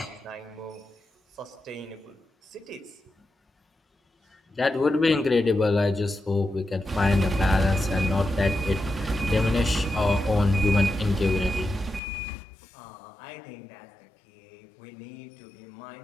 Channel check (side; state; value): right; drops out; at 12.0 s